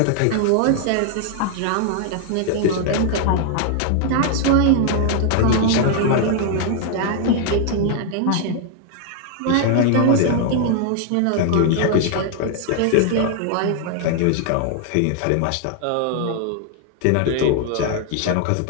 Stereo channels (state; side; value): different; both; correlation 0.00